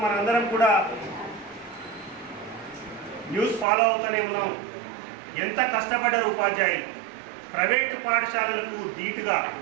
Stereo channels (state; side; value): drops out; left; at 3.7 s